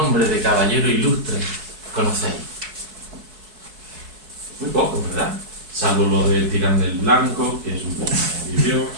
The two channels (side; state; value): left; late; 4.6 ms